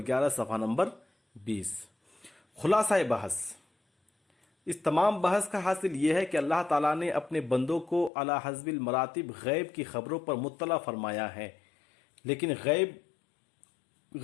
صفحہ نمبر 20۔ خلاصہ بحث، اس تمام بحث کا حاصل یہ ہے کہ اللہ تعالیٰ نے اپنے بندوں کو علی حسب المراتب غیب کی خبروں پر مطلع فرمایا ہے، لیکن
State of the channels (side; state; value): right; drops out; at 8.1 s